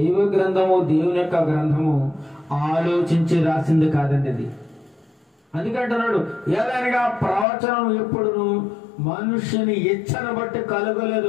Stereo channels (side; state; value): right; drops out; at 7.5 s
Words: గ్రంథము, దేవుని యొక్క గ్రంథము ఆలోచించి రాసింది కాదండి అది. అందుకంటున్నాడు, ఏదైనా ప్రవచనం ఎప్పుడును మనుషుని ఇచ్చను బట్టి